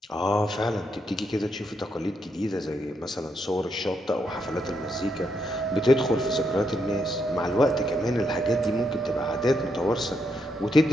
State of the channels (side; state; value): both; normal; correlation 0.79